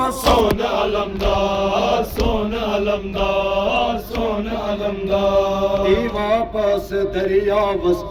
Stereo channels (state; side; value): identical; both; correlation 1.00